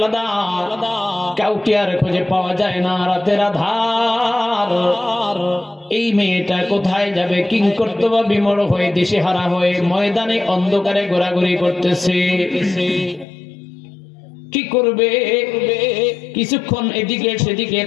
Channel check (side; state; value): right; drops out; at 13.2 s